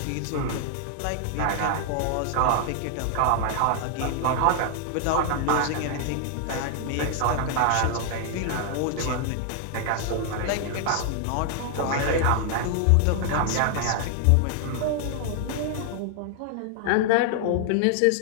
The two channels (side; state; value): both; different; correlation 0.00